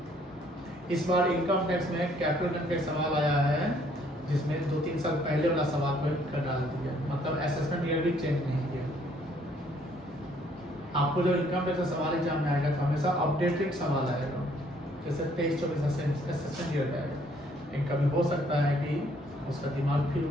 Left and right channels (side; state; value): both; normal; correlation 0.64